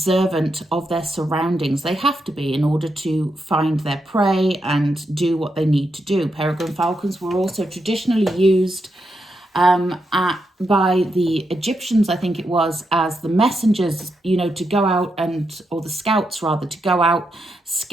of their surroundings. They have to be in order to find their prey and do what they need to do. Peregrine falcons were also traditionally used by the Egyptians, I think it was, as the messengers, you know, to go out or the scouts rather, to go out,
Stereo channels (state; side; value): normal; both; correlation 0.83